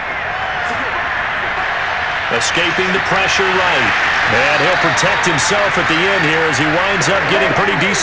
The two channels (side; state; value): both; identical; correlation 1.00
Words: Escaping the pressure right. And he'll protect himself at the end here as he winds up getting pretty